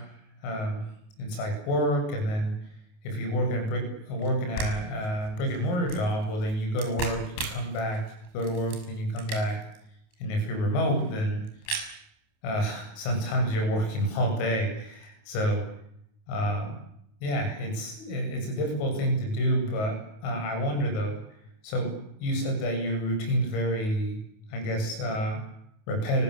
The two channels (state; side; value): late; right; 28 ms